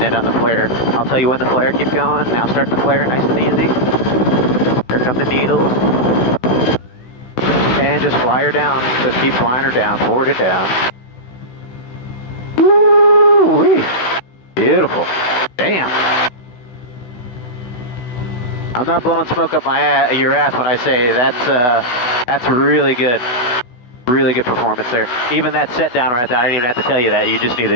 it on the flare. I'll tell you when the flare, keep going. Now start the flare nice and easy. Here come the needles. And just fly her down. Just keep flying her down, forward it down. Woo-wee. Beautiful. Damn. I'm not blowing smoke up your ass when I say that's really good. Really good performance there. Even that set down right there, I didn't even have to tell you that. You just need to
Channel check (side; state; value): right; late; 16 ms